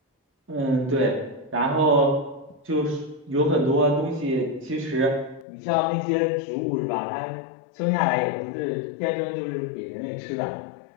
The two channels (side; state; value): right; drops out; at 5.5 s